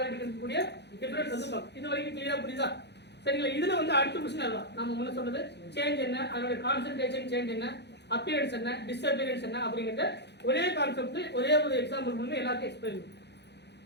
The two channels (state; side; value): late; right; 0.50 ms